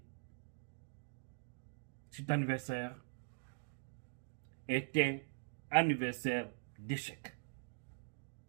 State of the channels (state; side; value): silent; left; digital silence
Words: cet anniversaire est un anniversaire d'échec.